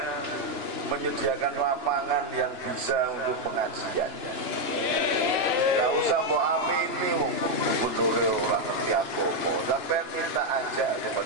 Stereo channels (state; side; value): late; left; 2.9 ms